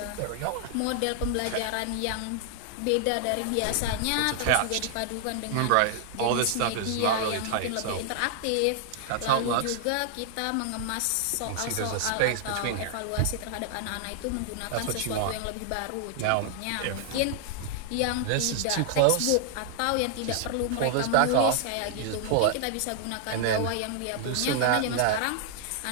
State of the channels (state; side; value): different; both; correlation 0.00